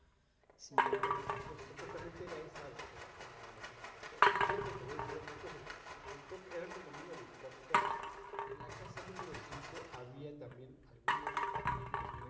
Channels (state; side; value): identical; both; correlation 1.00